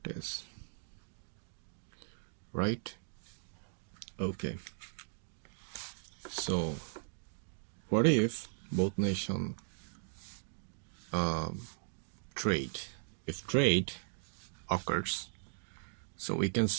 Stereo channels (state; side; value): silent; left; digital silence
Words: right? Okay. So what if both nation trade? If trade occurs, so we can